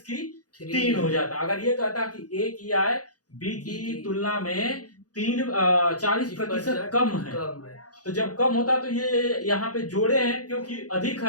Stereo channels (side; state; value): right; late; 0.68 ms